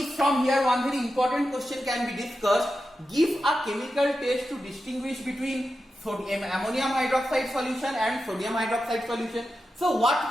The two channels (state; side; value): normal; both; correlation 0.90